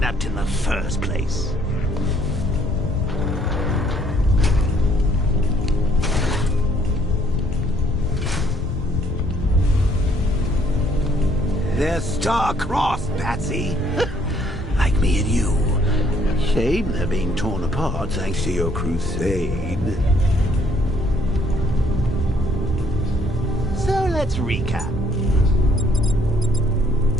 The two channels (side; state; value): both; normal; correlation 0.64